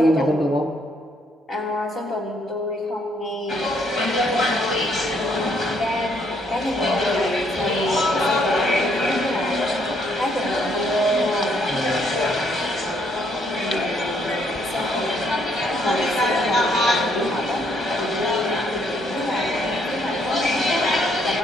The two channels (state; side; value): normal; both; correlation 0.70